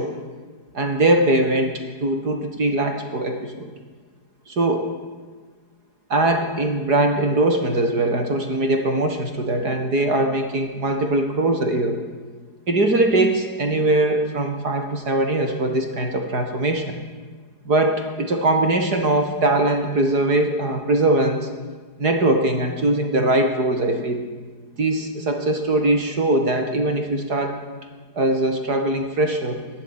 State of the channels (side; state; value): left; late; 4.8 ms